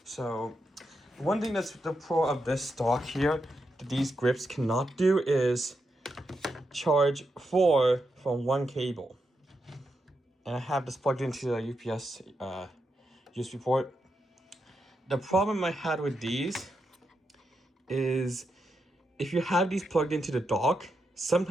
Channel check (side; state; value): both; normal; correlation 0.84